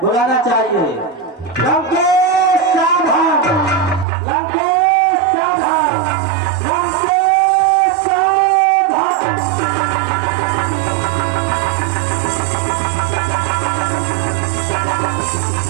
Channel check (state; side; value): drops out; left; at 4.0 s